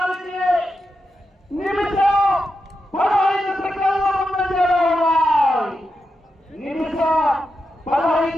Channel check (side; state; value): both; normal; correlation 0.87